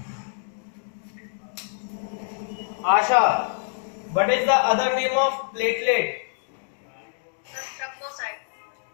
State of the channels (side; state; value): right; silent; digital silence